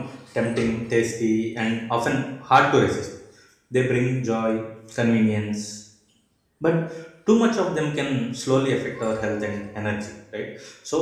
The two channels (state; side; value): identical; both; correlation 1.00